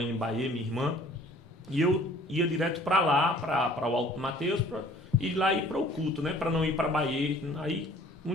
em Bahia, minha irmã, e eu ia direto para lá, para o Alto Mateus, para ir lá e ir para o culto, né, para não ir para Bahia. Aí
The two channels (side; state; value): both; normal; correlation 0.53